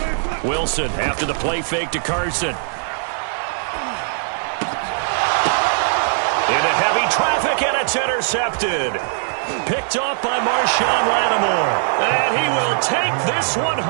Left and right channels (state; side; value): silent; left; 63 dB below the other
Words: Wilson after the play fake to Carson. Into heavy traffic, and it's intercepted. Picked off by Marshawn Lattimore. And he will take this one